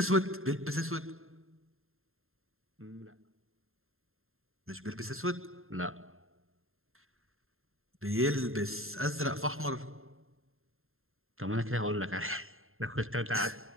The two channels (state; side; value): late; left; 0.61 ms